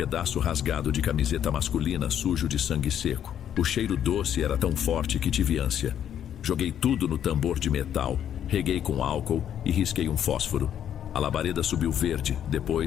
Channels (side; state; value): right; quieter; 9.8 dB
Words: rasgado de camiseta masculina sujo de sangue seco. O cheiro doce era tão forte que tive ânsia. Joguei tudo no tambor de metal, reguei com álcool e risquei um fósforo. A labareda subiu verde,